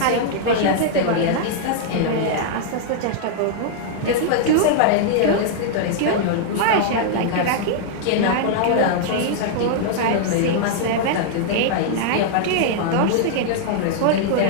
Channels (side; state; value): both; different; correlation -0.01